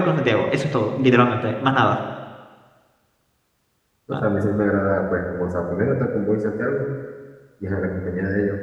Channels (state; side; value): identical; both; correlation 1.00